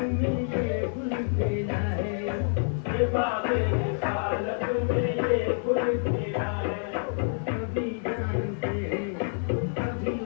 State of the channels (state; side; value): silent; right; 60 dB below the other